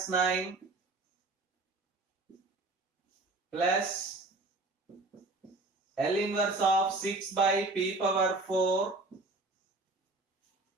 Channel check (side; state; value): left; quieter; 3.1 dB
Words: 9 plus L inverse of 6 by p power 4